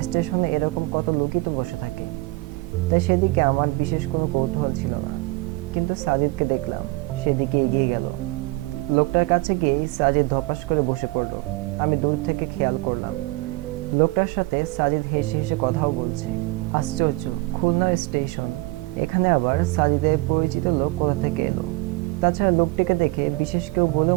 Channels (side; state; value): left; quieter; 22.7 dB